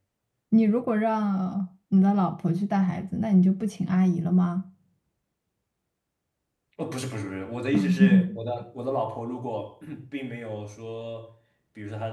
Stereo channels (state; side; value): identical; both; correlation 1.00